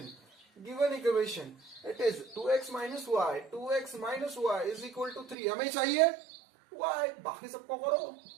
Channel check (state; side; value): drops out; left; at 5.4 s